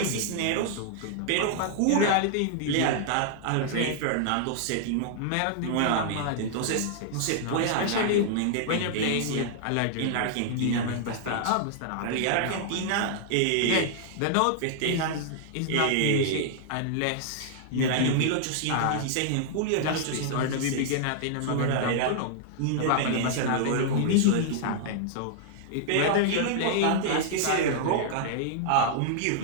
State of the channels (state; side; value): different; both; correlation -0.01